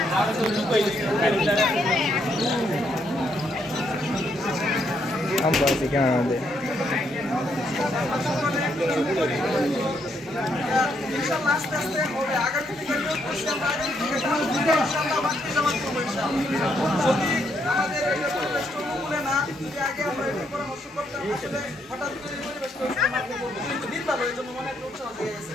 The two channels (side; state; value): both; normal; correlation 0.75